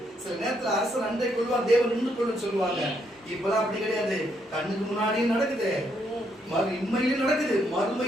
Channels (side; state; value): both; normal; correlation 0.74